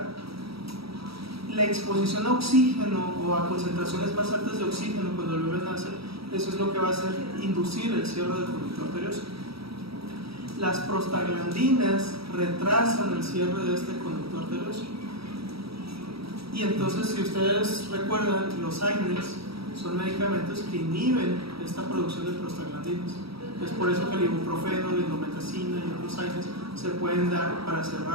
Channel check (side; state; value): left; late; 0.76 ms